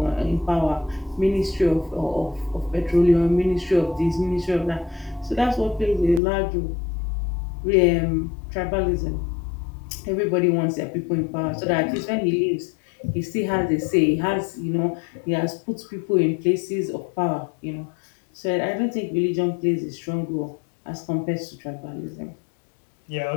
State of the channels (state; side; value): drops out; right; at 6.2 s